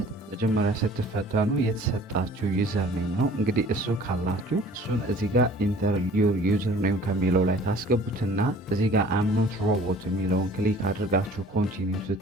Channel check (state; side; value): normal; both; correlation 0.50